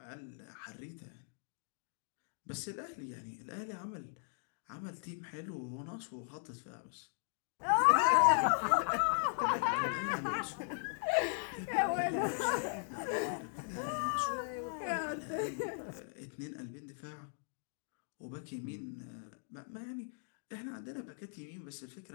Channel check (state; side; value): silent; right; digital silence